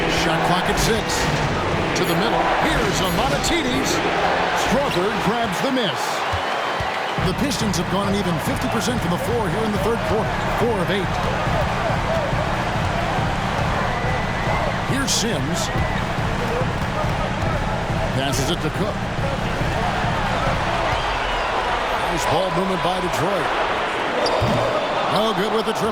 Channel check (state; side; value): identical; both; correlation 1.00